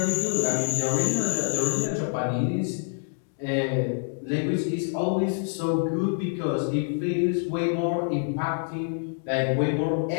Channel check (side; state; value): right; silent; digital silence